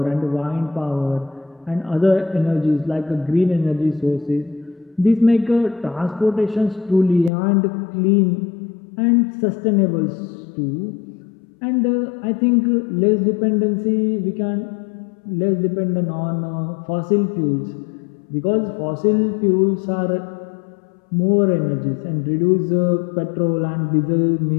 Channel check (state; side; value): drops out; right; at 7.3 s